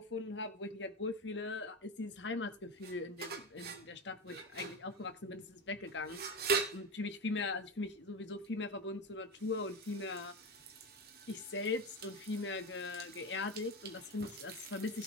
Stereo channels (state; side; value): normal; both; correlation 0.20